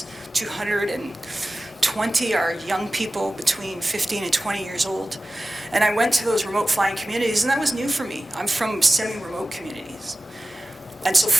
220 are young people between 15 and 20 years old. And I went to those remote flying communities, and that was new for me. I'm from semi-remote communities. And so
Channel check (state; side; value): normal; both; correlation 0.96